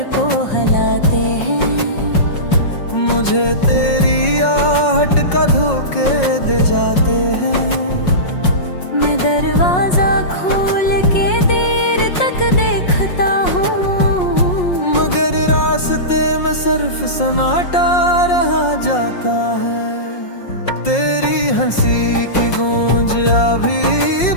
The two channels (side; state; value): right; late; 5.5 ms